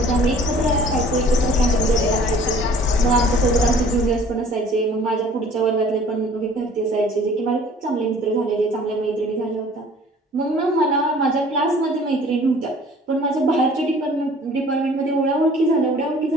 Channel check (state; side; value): normal; both; correlation 0.51